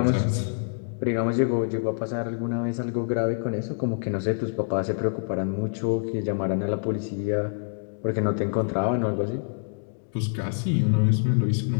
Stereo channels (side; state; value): right; silent; digital silence